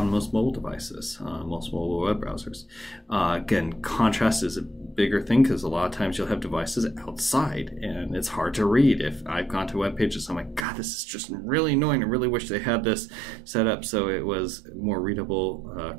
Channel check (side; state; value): left; drops out; at 10.7 s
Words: most mobile devices, most mobile web browsers. Again, contrast is a bigger thing because a lot of times you'll have devices outside and it's hard to read. If I've gone to web pages, I'm like, God, this is just really annoying. I really wish they had this set up so it was more readable